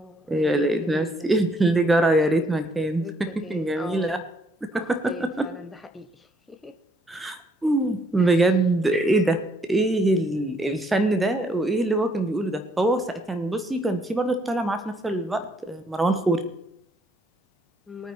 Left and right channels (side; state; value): both; normal; correlation 0.68